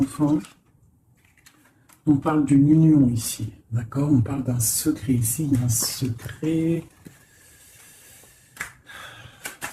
On parle d'une union ici. D'accord? On parle d'un secret ici. Il y a un secret.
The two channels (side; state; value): both; identical; correlation 1.00